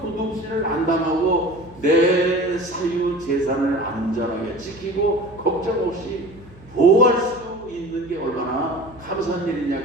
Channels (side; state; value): right; noise; hum, 22 dB below the sound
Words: 도둑질을 안 당하고 내 사유 재산을 안전하게 지키고 걱정 없이 보호할 수 있는 게 얼마나 감사한 일이냐